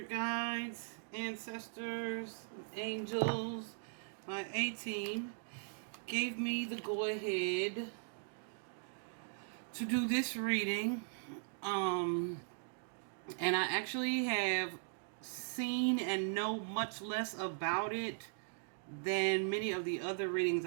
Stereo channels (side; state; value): left; silent; digital silence